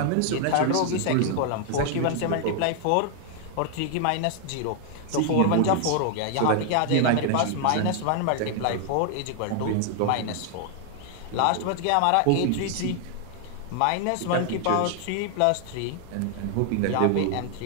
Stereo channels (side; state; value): both; different; correlation 0.00